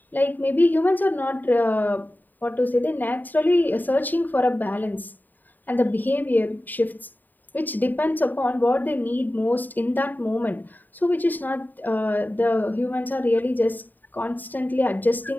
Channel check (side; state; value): right; late; 0.088 ms